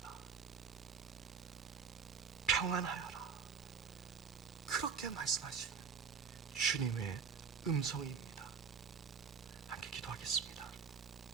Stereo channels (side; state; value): left; quieter; 6.0 dB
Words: 평안하여라, 그렇게 말씀하시는 주님의 음성입니다. 함께 기도하겠습니다.